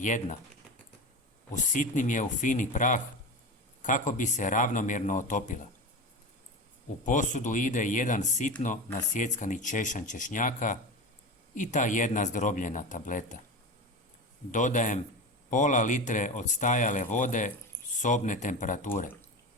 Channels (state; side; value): normal; both; correlation 0.26